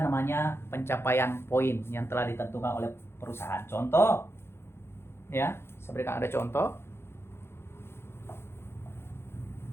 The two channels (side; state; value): right; late; 0.12 ms